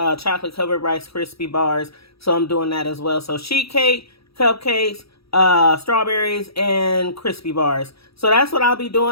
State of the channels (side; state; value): right; late; 0.77 ms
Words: chocolate covered Rice Krispie bars. So I'm doing that as well. So sheet cake, cupcakes, strawberries, and crispy bars. So that's what I'll be